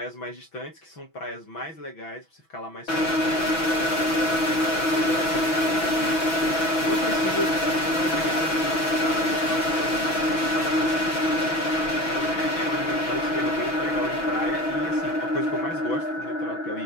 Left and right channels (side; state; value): right; late; 6.1 ms